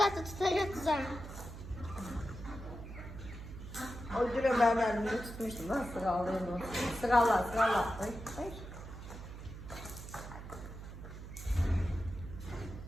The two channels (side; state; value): right; noise; hum, 11 dB below the sound